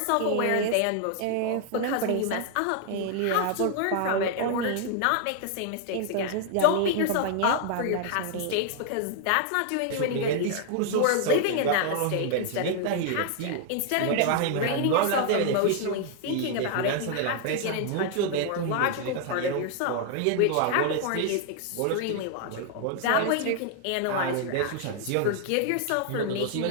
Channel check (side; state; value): both; different; correlation 0.00